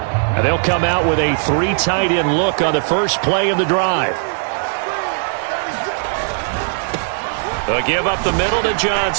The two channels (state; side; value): silent; left; digital silence